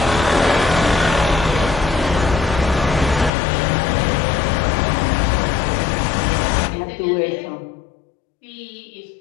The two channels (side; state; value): right; drops out; at 3.3 s